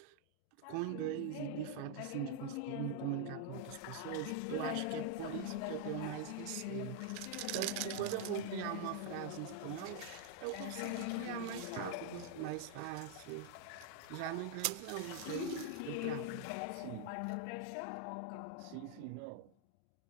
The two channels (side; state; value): both; different; correlation 0.00